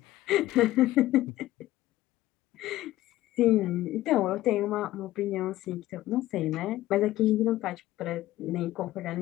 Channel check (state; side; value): quieter; right; 15.6 dB